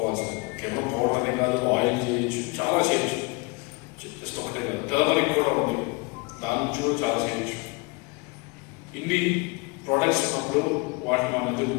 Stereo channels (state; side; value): quieter; right; 28.0 dB